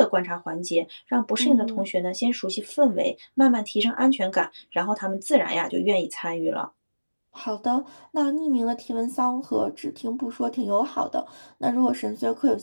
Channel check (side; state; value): both; inverted; correlation -1.00